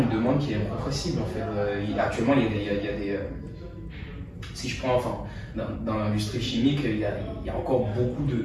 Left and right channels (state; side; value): identical; both; correlation 1.00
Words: demande qui est incompressible en fait. Actuellement, il y a des si je prends, enfin, dans l'industrie chimique, il y a encore beaucoup de